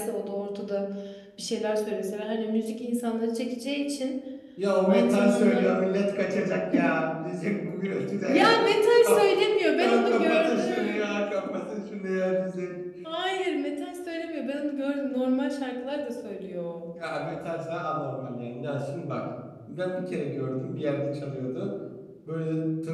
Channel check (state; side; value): identical; both; correlation 1.00